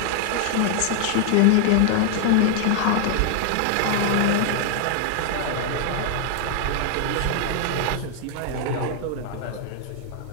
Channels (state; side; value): different; both; correlation 0.00